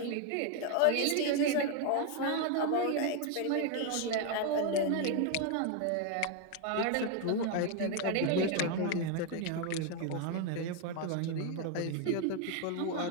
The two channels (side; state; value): both; different; correlation 0.01